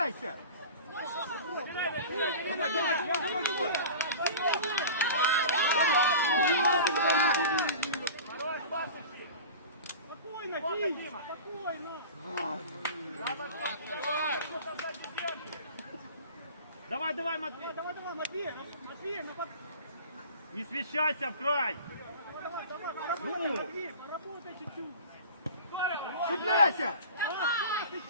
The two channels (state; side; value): inverted; both; correlation -0.36